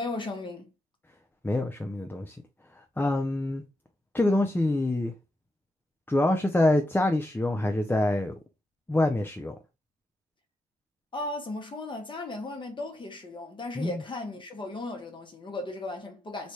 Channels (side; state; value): both; normal; correlation 0.86